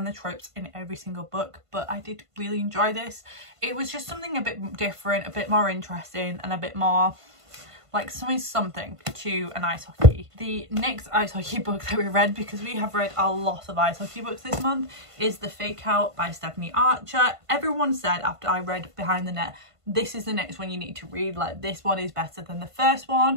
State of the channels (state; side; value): late; left; 1.5 ms